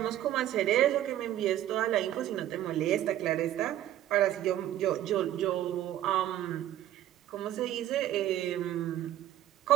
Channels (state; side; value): quieter; left; 12.6 dB